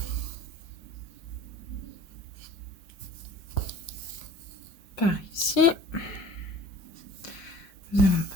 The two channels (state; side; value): late; right; 5.6 ms